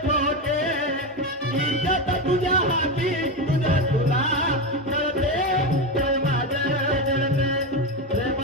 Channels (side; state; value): both; normal; correlation 0.14